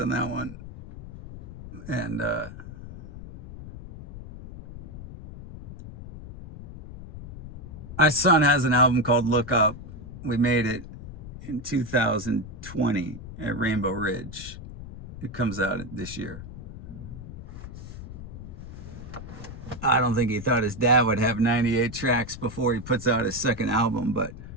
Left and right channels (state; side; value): noise; left; rumble, 12 dB below the sound